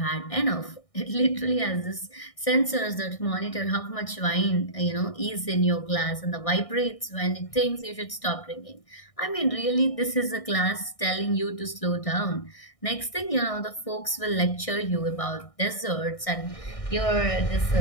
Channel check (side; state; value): right; late; 1.6 ms